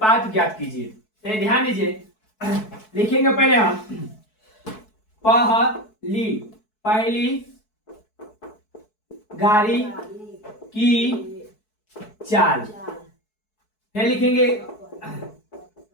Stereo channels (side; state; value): right; late; 4.6 ms